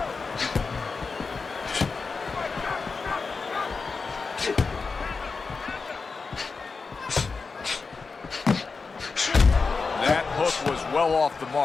That hook was well off the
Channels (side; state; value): right; quieter; 4.6 dB